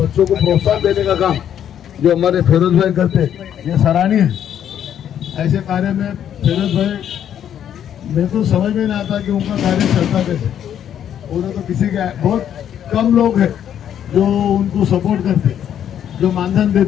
को प्रोत्साहन देने का काम जो हमारे फिरोज भाई करते, ये सराहनीय है। ऐसे कार्य में फिरोज भाई, मेरे तो समझ में नहीं आता कि उनका कार्य चलता कैसे। उन्हें तो किसी के बहुत कम लोग हैं जो उनको सपोर्ट करते, जो मानधन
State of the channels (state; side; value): quieter; right; 9.7 dB